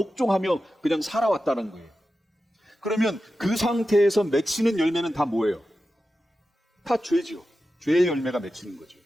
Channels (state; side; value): normal; both; correlation 0.92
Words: 그냥 살아왔다는 거예요. 그러면 그 상태에서 맺히는 열매는 다 뭐예요? 다 죄지요. 죄의 열매가 맺히는 거죠.